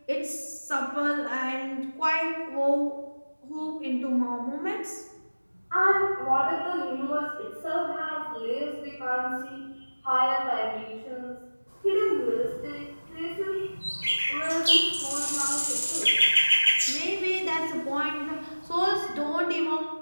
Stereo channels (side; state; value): both; inverted; correlation -1.00